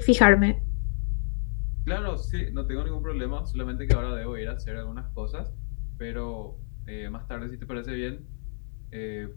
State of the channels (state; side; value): silent; right; digital silence